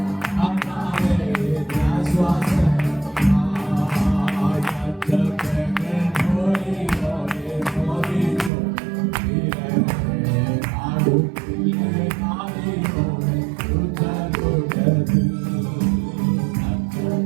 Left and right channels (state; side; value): drops out; left; at 8.5 s